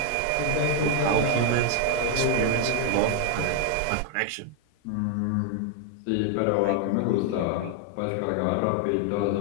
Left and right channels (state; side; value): different; both; correlation 0.00